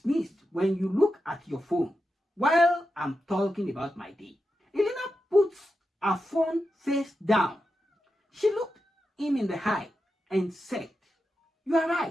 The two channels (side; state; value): both; normal; correlation 0.89